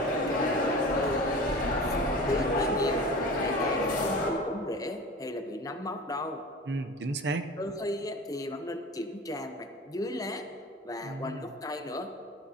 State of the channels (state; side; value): normal; both; correlation 0.36